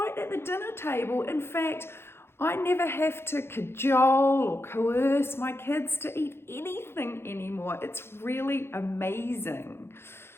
at the dinner table. In fact, I never have to cajole or coerce my kids to eat anything anymore. It's really amazing.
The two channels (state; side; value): late; right; 0.12 ms